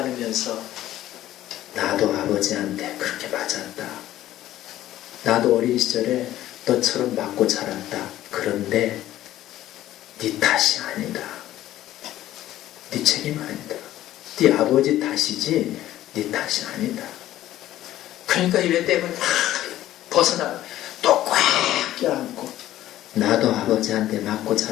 나도 아버지한테 그렇게 맞았다. 나도 어린 시절에 너처럼 맞고 자랐다. 그런데 네 탓이 아니다. 네 책임 아니다. 네 아버지 탓이지 네 탓이 아니다. 그러니까 이 맷데이먼이 벗어나 또 꽉 껴안고 나도 아버지한테 맞고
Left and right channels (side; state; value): right; quieter; 13.8 dB